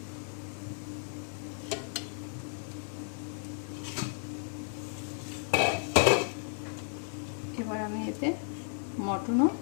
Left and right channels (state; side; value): silent; right; 55 dB below the other